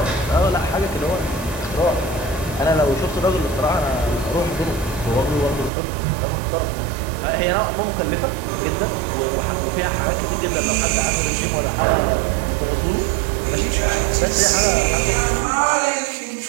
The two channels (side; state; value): left; drops out; at 5.7 s